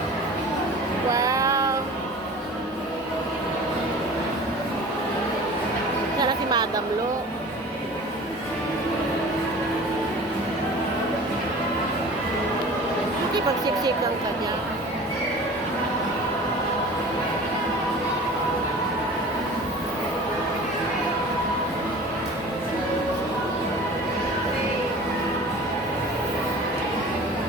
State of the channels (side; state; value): both; normal; correlation 0.41